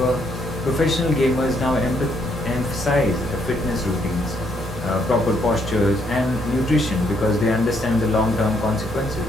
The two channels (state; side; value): normal; both; correlation 0.72